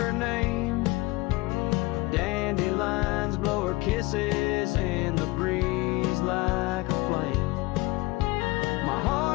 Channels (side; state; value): right; quieter; 21.9 dB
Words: name. Dandelions blow her kisses in the breeze like a flame. My